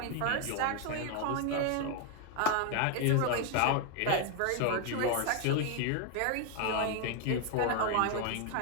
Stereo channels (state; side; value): different; both; correlation 0.00